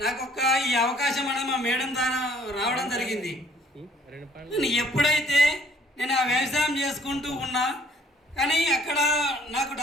నాకు ఈ అవకాశం అనేది మా మేడం ద్వారా రావడం జరిగింది. ఎప్పుడైతే నేను ఆ వ్యవసాయం చేసుకుంటూ ఉన్నా కానీ అక్కడ నాకు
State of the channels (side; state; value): both; normal; correlation 0.59